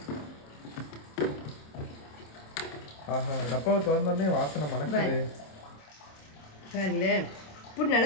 ஆஹா, டப்பாவை திறந்தோடனே வாசனை மணக்குது. பாருங்களே, இப்படி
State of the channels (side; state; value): right; late; 27 ms